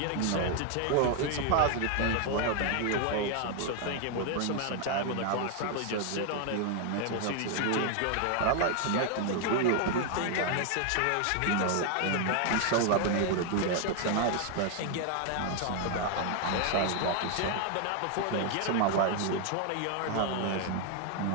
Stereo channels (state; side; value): different; both; correlation 0.01